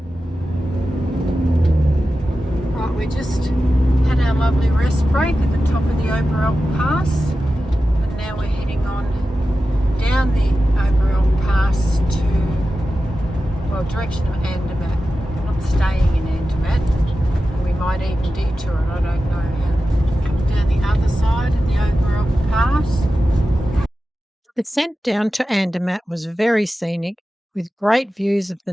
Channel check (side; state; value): both; normal; correlation 0.93